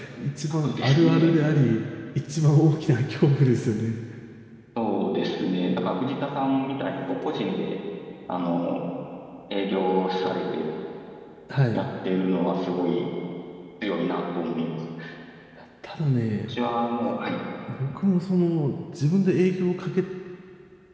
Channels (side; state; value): both; identical; correlation 1.00